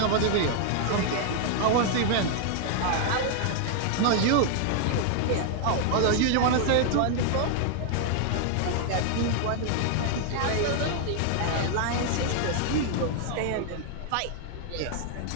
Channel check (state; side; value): different; both; correlation 0.00